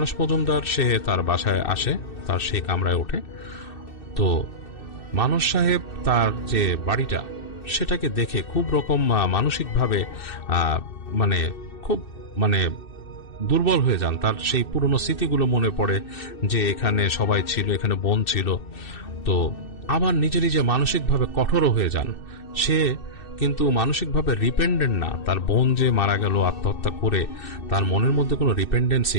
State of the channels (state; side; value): late; right; 2.6 ms